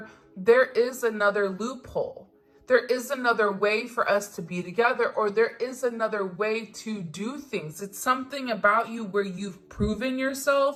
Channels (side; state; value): both; identical; correlation 1.00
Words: there is another loophole. There is another way for us to be together, or there is another way to do things. It's something about you where you've proven